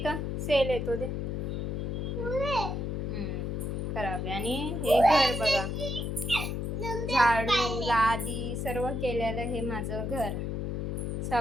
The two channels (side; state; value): left; noise; hum, 2 dB below the sound